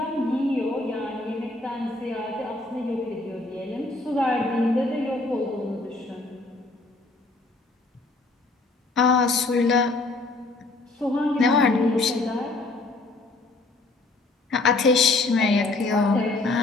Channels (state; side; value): quieter; right; 3.2 dB